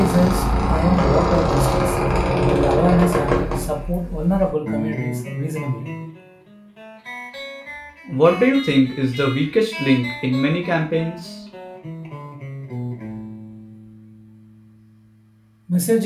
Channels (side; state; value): both; identical; correlation 1.00